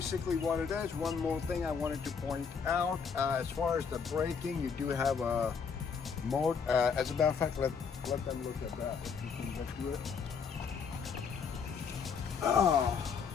what it is. One more thing I wanted to point out, as far as the braking, you do have a mode. As a matter of fact, let them look at that, if you can get to it. No.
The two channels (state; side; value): quieter; right; 6.1 dB